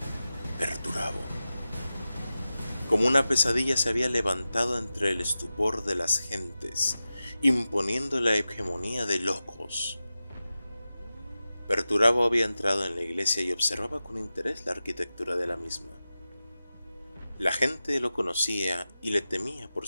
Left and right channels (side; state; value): both; inverted; correlation -0.94